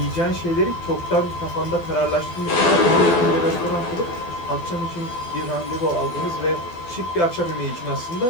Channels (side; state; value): right; late; 12 ms